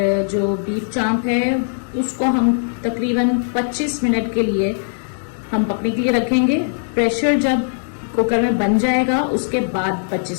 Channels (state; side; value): silent; right; digital silence